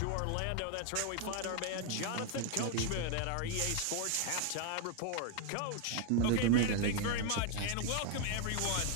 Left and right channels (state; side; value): different; both; correlation 0.00